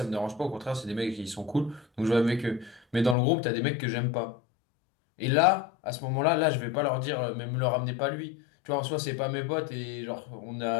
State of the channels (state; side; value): drops out; right; at 3.2 s